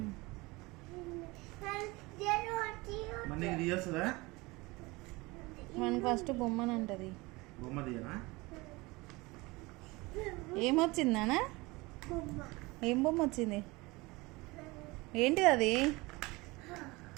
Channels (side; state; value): left; quieter; 23.2 dB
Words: మనకి ఫస్ట్ బొమ్మని అంటది. ఏమొచ్చిందానా? ఏం బొమ్మ వచ్చింది? ఏంటిది అది?